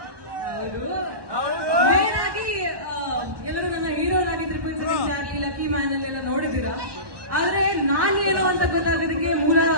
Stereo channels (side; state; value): left; late; 1.1 ms